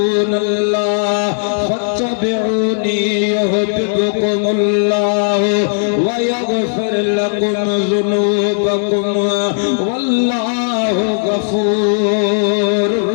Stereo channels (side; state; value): right; silent; digital silence